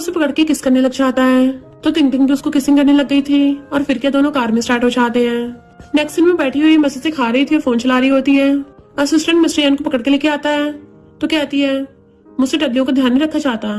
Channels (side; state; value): both; identical; correlation 1.00